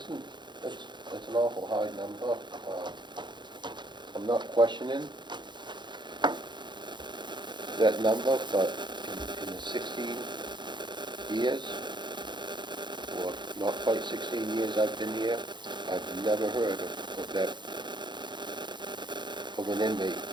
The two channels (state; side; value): late; left; 0.22 ms